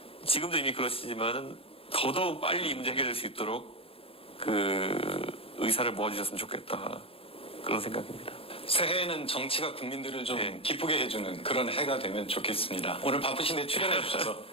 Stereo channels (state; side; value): late; right; 0.27 ms